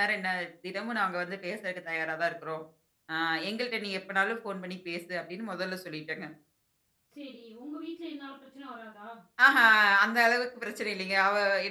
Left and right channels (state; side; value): identical; both; correlation 1.00